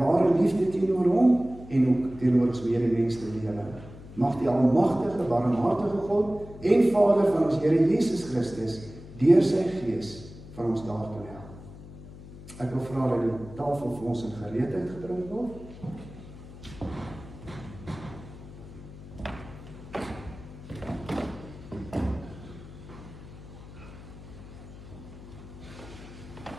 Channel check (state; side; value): noise; left; hum, 16 dB below the sound